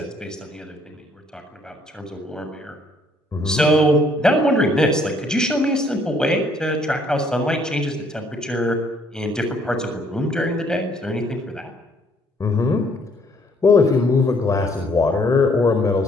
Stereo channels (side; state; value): both; normal; correlation 0.64